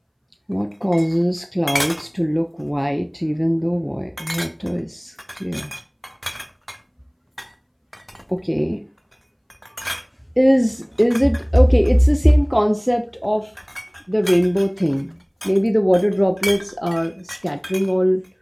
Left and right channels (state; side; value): identical; both; correlation 1.00